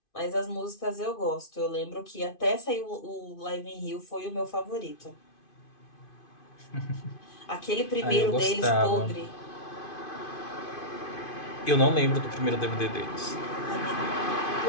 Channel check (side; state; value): right; late; 2.5 ms